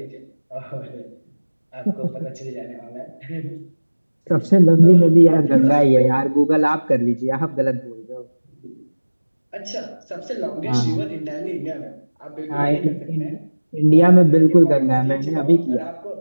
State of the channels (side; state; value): both; inverted; correlation -1.00